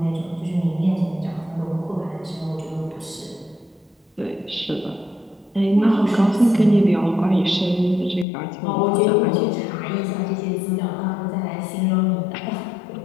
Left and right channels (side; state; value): right; drops out; at 8.2 s